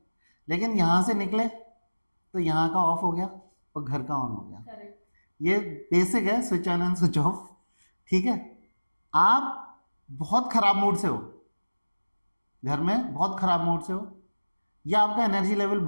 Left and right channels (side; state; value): both; inverted; correlation -1.00